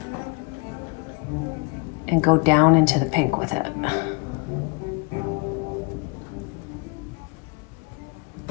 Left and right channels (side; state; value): right; quieter; 27.4 dB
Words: and go down into the pink with it.